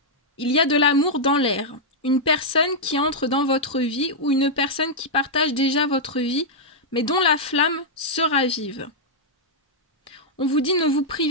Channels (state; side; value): normal; both; correlation -0.06